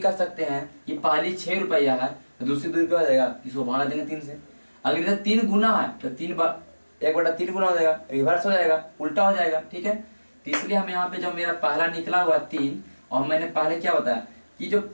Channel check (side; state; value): both; inverted; correlation -1.00